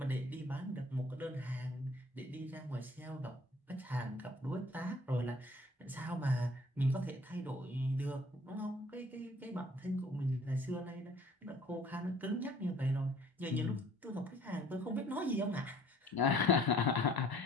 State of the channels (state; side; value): normal; both; correlation 0.55